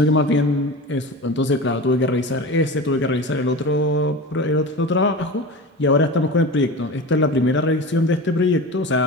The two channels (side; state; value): both; normal; correlation 0.30